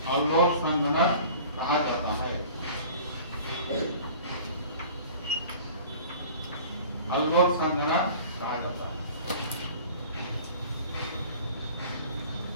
अनलॉक संघनन कहा जाता है। अल्कोहल संघनन कहा जाता है।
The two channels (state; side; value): inverted; both; correlation -0.45